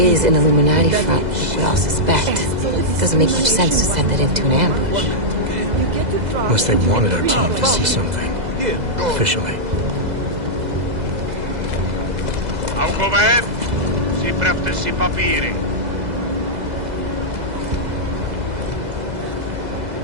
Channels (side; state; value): left; late; 2.0 ms